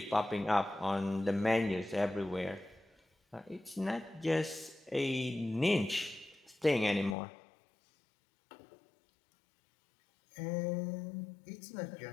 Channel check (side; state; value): right; drops out; at 7.2 s